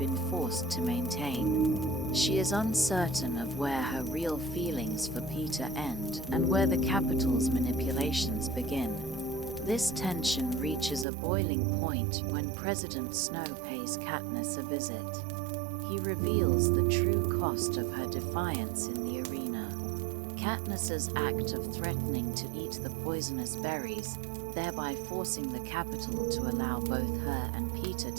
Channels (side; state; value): left; drops out; at 11.1 s